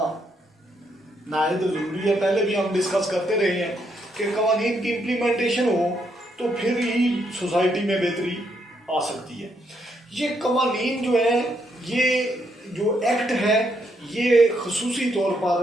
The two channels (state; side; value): normal; both; correlation 0.76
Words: नायत ज़रूरी है। पहले भी हम डिस्कस करते रहे हैं कि कवानीन की इम्प्लीमेंटेशन हो तो फिर ही सोसाइटी में बेहतरी आ सकती है। ये कवानीन जो है, ये जो एक्ट है, ये खसूसी तौर